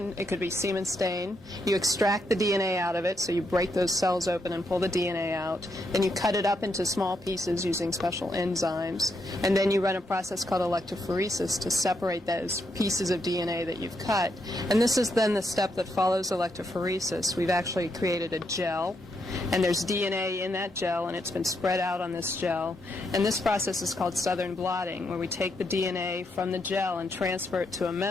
it could be semen stain. You extract the DNA out of it, so you break those cells open and pull the DNA out. Then you cut it up into small pieces using special enzymes. And then you run a process called electrophoresis to separate those pieces of DNA that you've cut. And this is then the step that follows electrophoresis. We've actually created a gel, and there's DNA in that gel, and it's been spread out on this gel. And this process is called southern blotting, where we take the DNA from the gel and transfer it to a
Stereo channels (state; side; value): normal; both; correlation 0.79